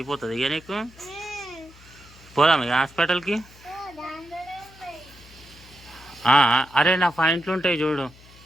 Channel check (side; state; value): left; noise; hum, 23 dB below the sound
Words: ఇక నీకు. పోదాం ఇక హాస్పిటల్కి. అరే నా పాయింట్లు ఉంటాయి చూడు.